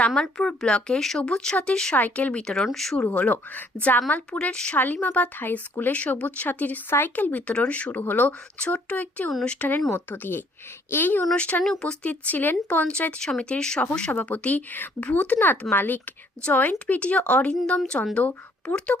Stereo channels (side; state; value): both; normal; correlation 0.63